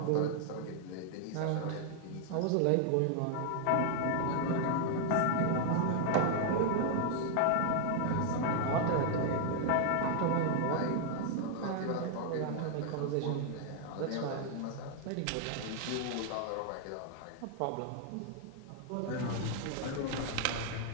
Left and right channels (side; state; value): both; different; correlation 0.00